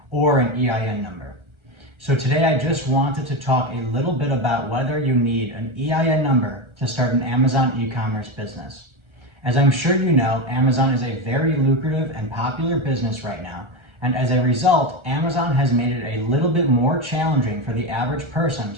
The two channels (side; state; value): left; late; 1.3 ms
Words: or an EIN number. So today I just wanted to talk a little bit about whether you need an EIN number to start an Amazon e-commerce business. As I'm sure you know, Amazon is a very lucrative and popular business right now. And as a result, Amazon has made it a little bit more challenging for the average person